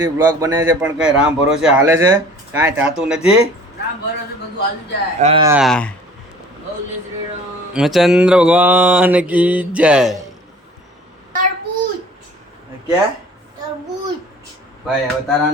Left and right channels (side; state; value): both; normal; correlation 0.48